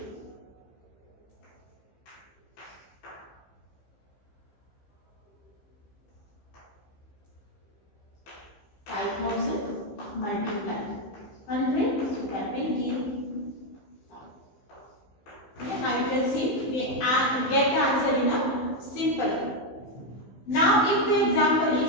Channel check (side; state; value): right; late; 15 ms